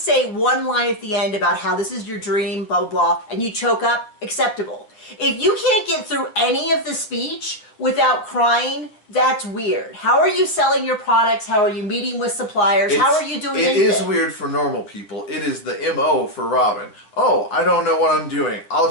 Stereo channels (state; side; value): late; right; 9.5 ms